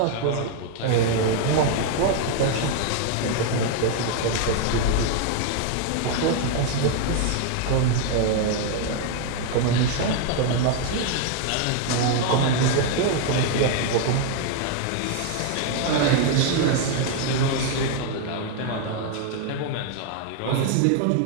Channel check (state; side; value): different; both; correlation 0.00